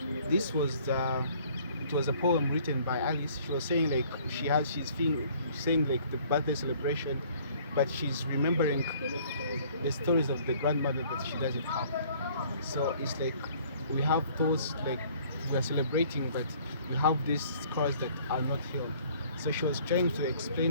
this was it was a poem written by Alice. She was saying like she's saying like the birthday celebration, but she's remembering the stories of the grandmother that she doesn't have. So it's like we have those like we are celebrating, but we have these scars that are not healed. So she was trying to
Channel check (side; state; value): both; inverted; correlation -0.56